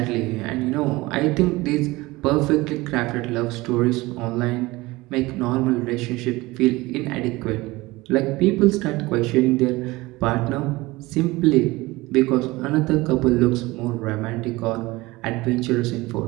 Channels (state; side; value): quieter; left; 20.8 dB